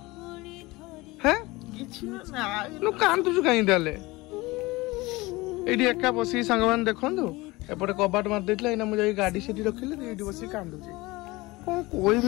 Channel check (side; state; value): right; quieter; 21.6 dB